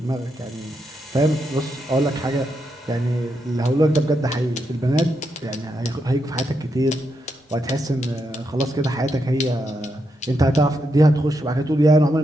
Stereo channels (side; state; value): both; normal; correlation 0.83